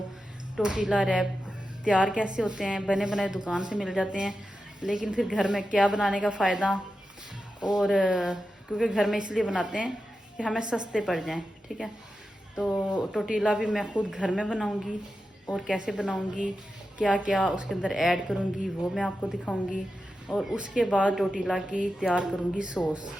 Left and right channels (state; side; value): normal; both; correlation 0.91